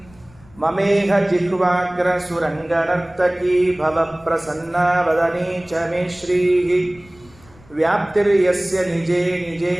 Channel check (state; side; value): noise; left; rumble, 26 dB below the sound